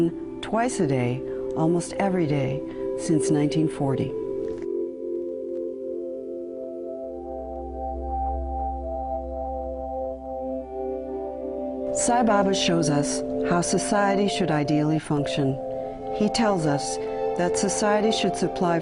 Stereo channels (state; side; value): identical; both; correlation 1.00